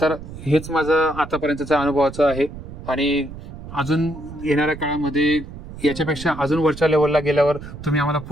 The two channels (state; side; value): noise; right; rumble, 13 dB below the sound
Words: तर हेच माझं आतापर्यंतच्या अनुभवाचं आहे, आणि अजून येणाऱ्या काळामध्ये याच्यापेक्षा अजून वरच्या लेवलला गेल्यावर तुम्ही आम्हाला